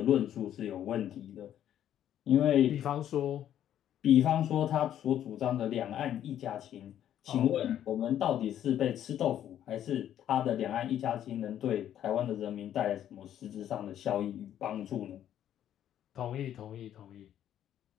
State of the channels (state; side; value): quieter; right; 10.8 dB